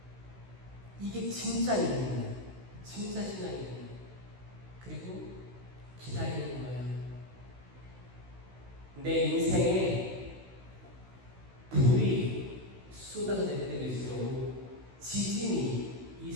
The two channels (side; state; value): left; late; 16 ms